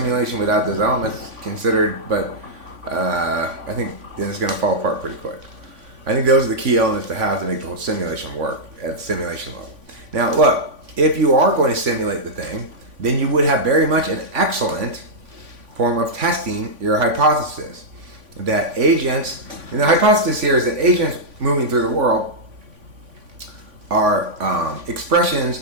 without those elements considered, but I think then it's going to fall apart pretty quick. I think those are the key elements to have to make the whole simulation work at the simulation level. Now, look, if you are going to simulate the thing, then you would have very much an excellent form of testing your hypothesis. That agents, and the hypothesis here is that agents moving through the world are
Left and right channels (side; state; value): left; late; 3.5 ms